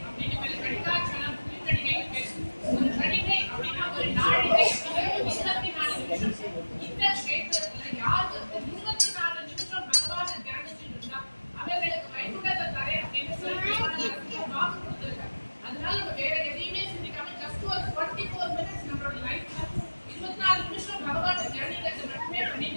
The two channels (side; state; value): both; inverted; correlation -1.00